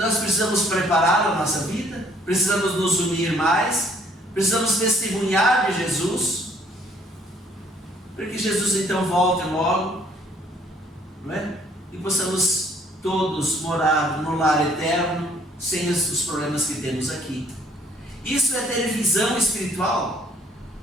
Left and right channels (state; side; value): normal; both; correlation 0.62